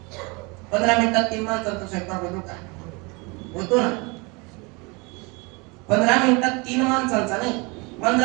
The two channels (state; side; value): quieter; left; 28.3 dB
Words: 15 मिनिटात 3 माणसांचा स्वयंपाक होतो का? होतो ना. 15 मिनिटात 3 माणसांचा नाही,